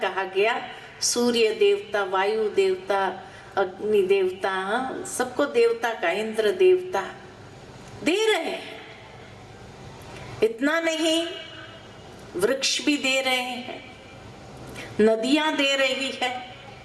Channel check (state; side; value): identical; both; correlation 1.00